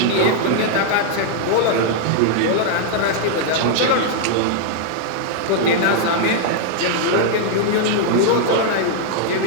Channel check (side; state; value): both; different; correlation -0.01